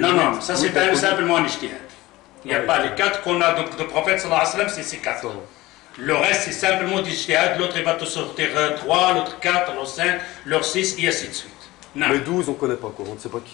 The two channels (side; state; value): right; quieter; 18.8 dB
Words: ça c'est simplement un ijtihad. Il n'y a pas les 4 qu'on a de prophète sallallahu alayhi wa sallam, c'est ces 4. Le reste c'est simplement du ijtihad, l'autre il va te sortir 3, l'autre 4, l'autre 5, l'autre 6 et ainsi de suite. Non. Mais 12 on ne connaît pas quoi, on ne sait pas